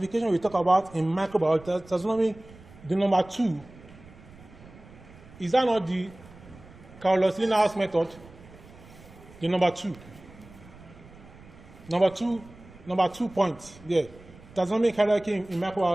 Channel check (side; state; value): right; noise; rumble, 21 dB below the sound